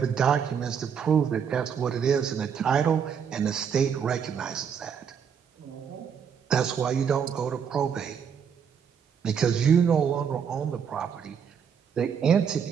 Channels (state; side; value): quieter; left; 7.3 dB